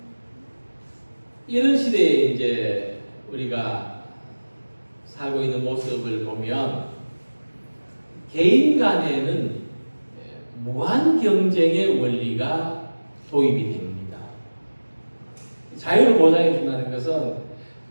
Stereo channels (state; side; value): inverted; both; correlation -1.00